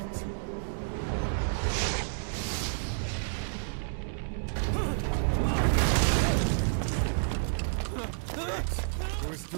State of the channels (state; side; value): silent; left; digital silence